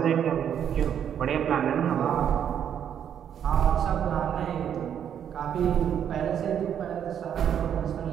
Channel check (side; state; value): left; quieter; 9.0 dB